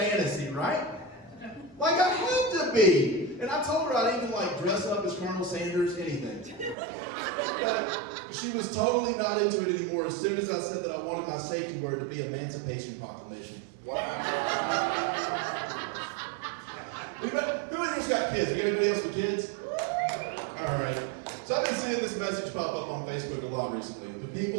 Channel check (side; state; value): left; drops out; at 6.8 s